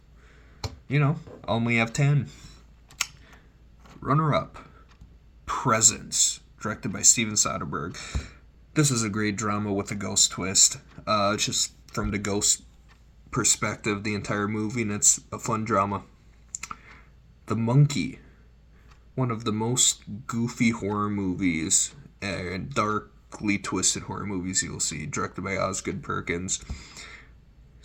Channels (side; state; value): both; identical; correlation 1.00